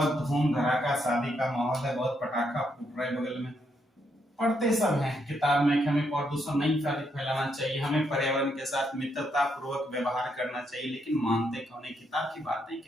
धूम धड़ाका शादी का माहौल है, बहुत पटाखा फूट रहा है बगल में। पढ़ते सब हैं किताब में कि हमें प्रदूषण नहीं फैलाना चाहिए, हमें पर्यावरण के साथ मित्रता पूर्वक व्यवहार करना चाहिए, लेकिन मानते कौन है, किताब की बातें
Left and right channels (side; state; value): both; normal; correlation 0.77